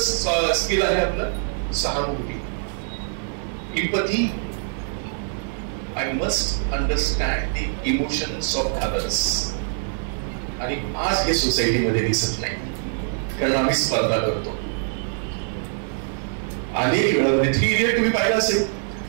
स्किल आहे आपलं सहानुभूती, empathy. I must understand the emotions of others. आणि आज हे सोसायटीमध्ये दिसत नाही, कारण आम्ही स्पर्धा करतो. अनेक वेळा 3 इडियट तुम्ही पाहिलं असेल,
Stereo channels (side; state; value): left; silent; 63 dB below the other